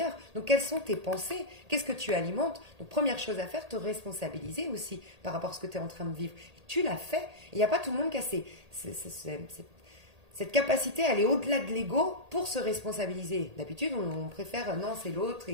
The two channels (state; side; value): late; left; 1.8 ms